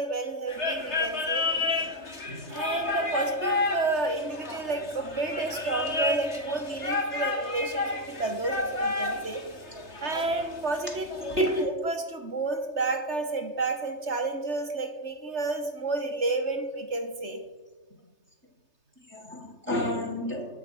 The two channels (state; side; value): late; left; 3.3 ms